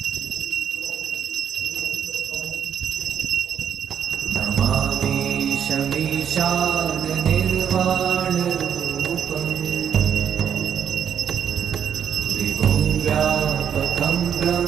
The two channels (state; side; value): quieter; left; 8.3 dB